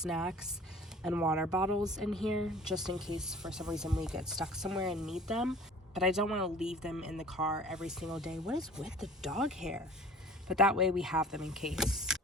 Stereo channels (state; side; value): normal; both; correlation 0.46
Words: and water bottles in here just in case for some reason we get stuck somewhere and need them. But I don't want to leave them in the car every single day. What is with the dog hair? but that way we have them in case.